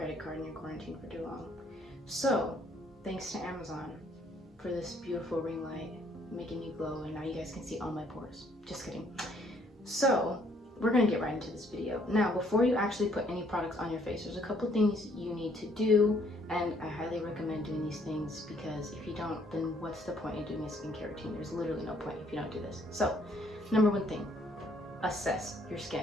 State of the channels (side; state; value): both; normal; correlation 0.65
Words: card and you're quarantined for too long. So, thanks to Amazon for this beautiful ring light making me glow, and now you guys can see all my pores. Just kidding. So, we're gonna get right into this video. Now, before you actually put any products on your face, there's a couple things you need to do, and I highly recommend doing these things because if you don't, then what's the point in doing a skincare routine? There's literally no point if you don't do this. So, number one thing, assess your